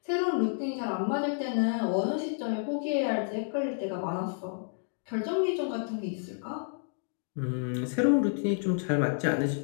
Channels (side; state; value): right; silent; digital silence